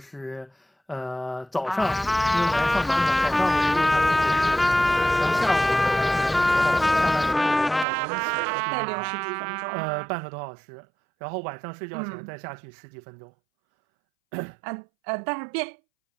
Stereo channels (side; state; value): left; drops out; at 7.9 s